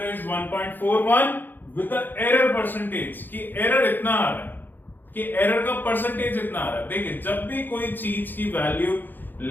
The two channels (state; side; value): late; right; 0.091 ms